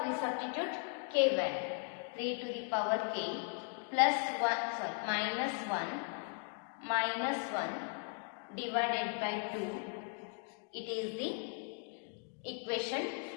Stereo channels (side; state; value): right; quieter; 38.3 dB